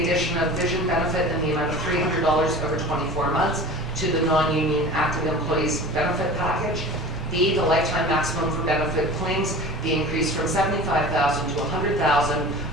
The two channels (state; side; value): normal; both; correlation 0.38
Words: addition of vision benefit in the amount of $300 over 24 months to the non-union active employees benefit package. B, the lifetime maximum for benefit claims be increased from $75,000 to $100,000